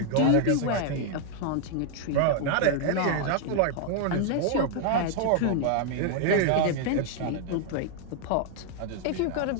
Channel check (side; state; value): both; different; correlation 0.00